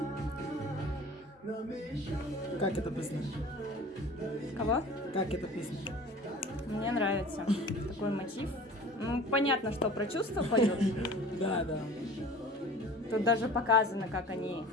Как эта песня? Кого? Как эта песня? Мне нравится такой мотив. Ну, понятно, что про чувства поют. Да. Тут даже показано, как они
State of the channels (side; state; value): both; normal; correlation 0.43